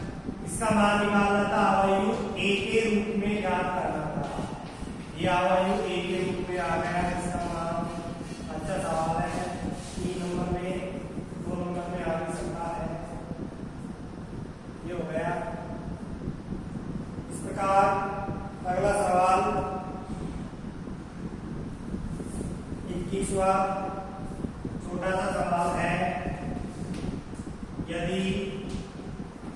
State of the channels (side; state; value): both; identical; correlation 1.00